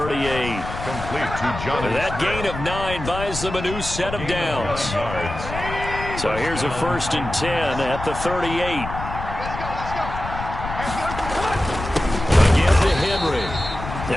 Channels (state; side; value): noise; left; rumble, 8 dB below the sound